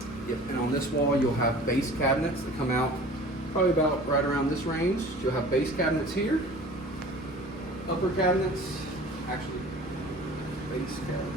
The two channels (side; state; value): both; normal; correlation 0.43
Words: Yep. And on this wall, you'll have base cabinets that come out probably about right around this range. You'll have base cabinets here, upper cabinets, actually base cabinets.